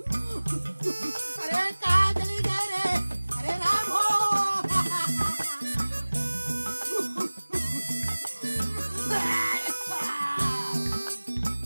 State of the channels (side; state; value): both; inverted; correlation -1.00